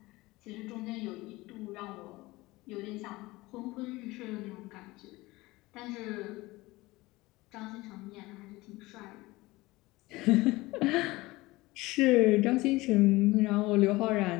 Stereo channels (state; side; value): quieter; right; 20.5 dB